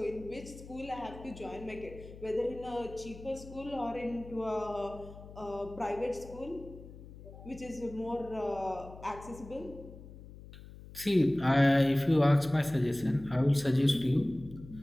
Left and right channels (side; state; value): left; noise; hum, 16 dB below the sound